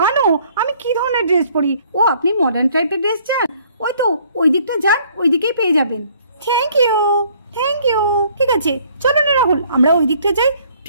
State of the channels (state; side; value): inverted; both; correlation -0.61